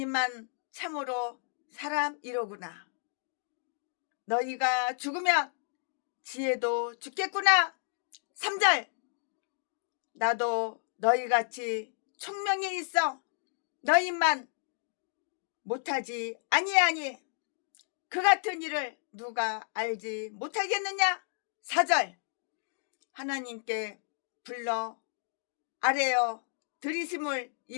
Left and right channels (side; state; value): right; silent; digital silence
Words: 참으로 사람이로구나. 너희가 죽으면 지혜도 죽겠구나. 3절. 나도 너희같이 총명이 있어 너희만 못하지 아니하니 그 같은 일을 누가 알지 못하겠느냐. 4절. 하나님께 불러 아뢰어 들이심을